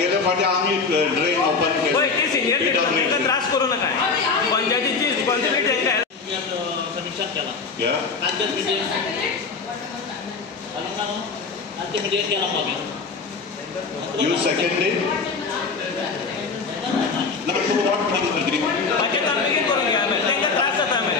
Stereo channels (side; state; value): right; quieter; 4.7 dB